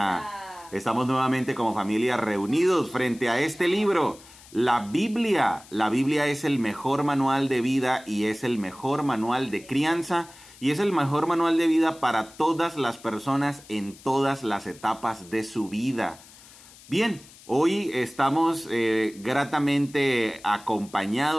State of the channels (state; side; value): noise; left; hiss, 22 dB below the sound